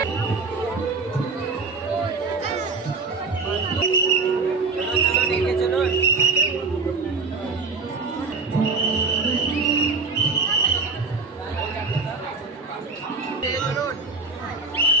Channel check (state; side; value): quieter; left; 4.2 dB